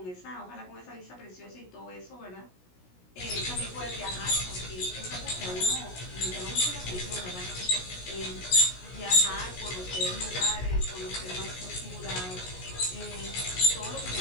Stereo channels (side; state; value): right; late; 16 ms